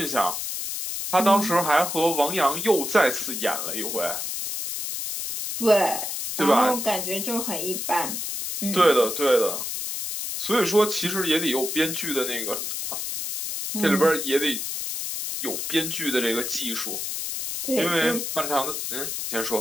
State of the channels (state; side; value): noise; left; hiss, 4 dB below the sound